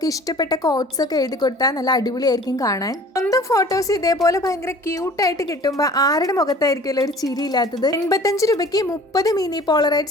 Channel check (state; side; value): normal; both; correlation 0.47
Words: ഇഷ്ടപ്പെട്ട കോട്ട്സ് ഒക്കെ എഴുതി കൊടുത്താൽ നല്ല അടിപൊളിയായിരിക്കും കാണാൻ. സ്വന്തം ഫോട്ടോസ് ഇതേപോലെ ഭയങ്കര ക്യൂട്ടായിട്ട് കിട്ടുമ്പോൾ ആരുടെ മുഖത്തായിരിക്കുമല്ലോ ഒരു ചിരി ഇല്ലാത്തത്. 85 രൂപയ്ക്ക് 30 മിനി